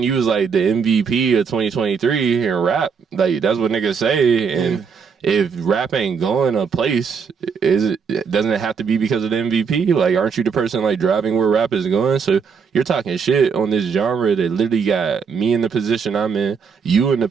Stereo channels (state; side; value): quieter; left; 6.0 dB